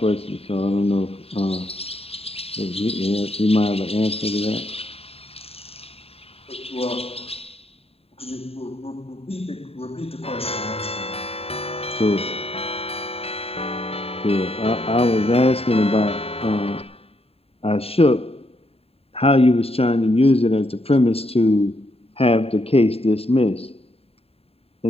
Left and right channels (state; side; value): late; right; 0.29 ms